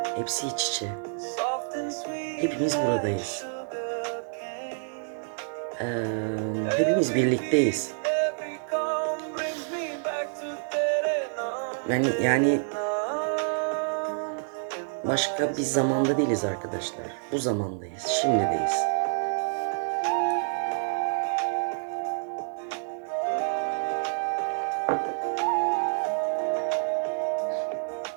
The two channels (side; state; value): left; silent; digital silence